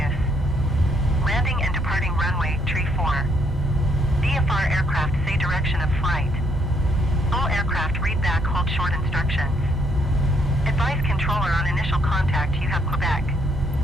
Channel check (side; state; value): both; normal; correlation 0.70